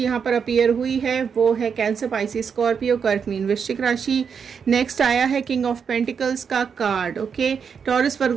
यहाँ पर अपीयर हुई है वो है कैंसर, पाइसिस, स्कॉर्पियो, कर्क, मीन, वृश्चिक राशि। नेक्स्ट आया है किंग ऑफ पेंटिकल्स का कार्ड। ओके, टॉरस,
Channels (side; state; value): left; quieter; 6.6 dB